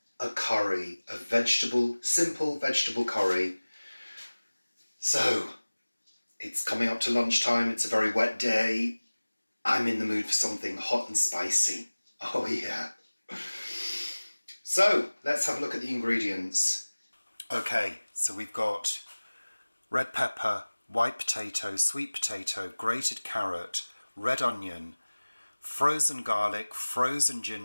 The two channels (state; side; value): inverted; both; correlation -1.00